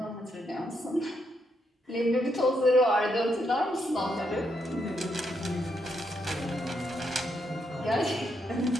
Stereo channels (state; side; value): normal; both; correlation 0.79